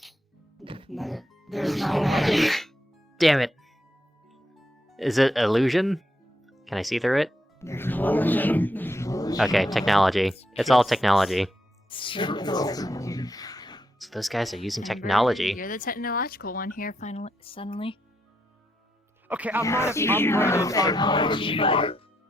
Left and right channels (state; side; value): normal; both; correlation 0.80